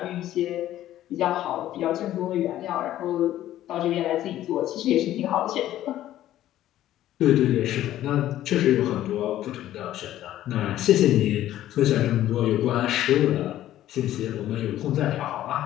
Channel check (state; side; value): quieter; right; 13.2 dB